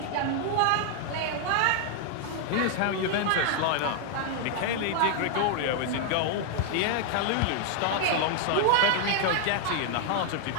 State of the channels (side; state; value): both; different; correlation 0.00